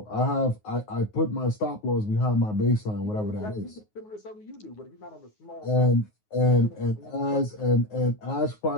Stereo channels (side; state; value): right; late; 9.5 ms